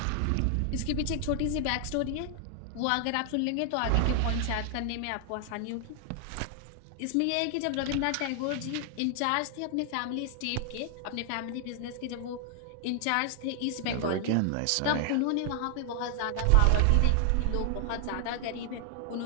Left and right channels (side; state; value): both; different; correlation 0.00